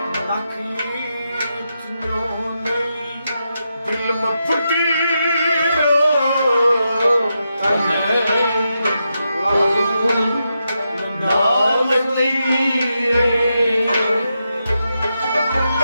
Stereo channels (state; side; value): inverted; both; correlation -0.86